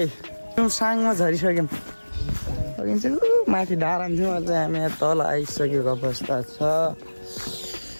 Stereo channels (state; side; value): inverted; both; correlation -1.00